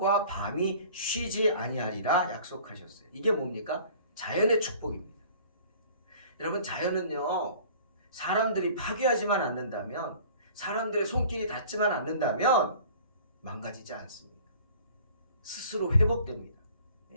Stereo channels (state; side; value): inverted; both; correlation -0.48